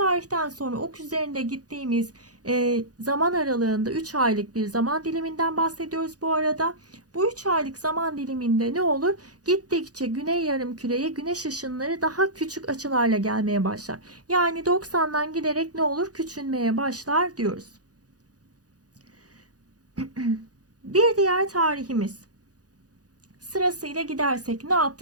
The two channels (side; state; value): left; late; 0.68 ms